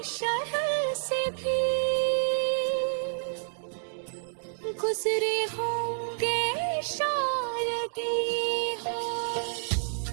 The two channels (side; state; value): left; silent; digital silence